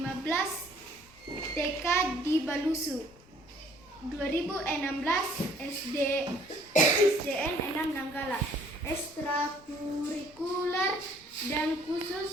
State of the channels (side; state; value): left; noise; rumble, 25 dB below the sound